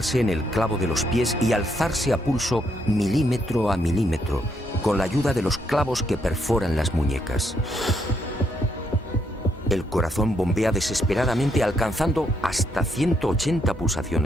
en el clavo de los pies y alzarse a pulso milímetro a milímetro, con la ayuda de los clavos que perforan las muñecas. El corazón bombea desesperadamente, alcanzando hasta 180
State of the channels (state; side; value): normal; both; correlation 0.76